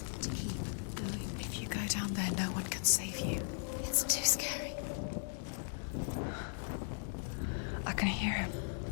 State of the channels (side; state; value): right; silent; digital silence